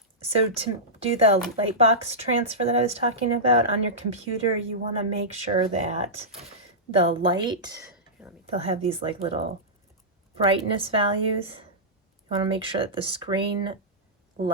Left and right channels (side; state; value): both; normal; correlation -0.14